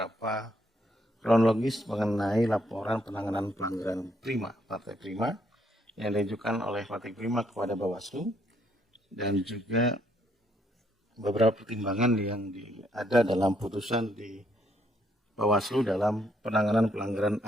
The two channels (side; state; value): both; normal; correlation 0.71